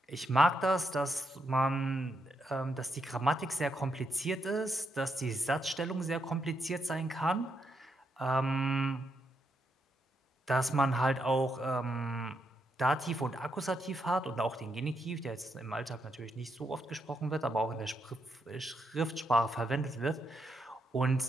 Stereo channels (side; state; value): both; normal; correlation 0.80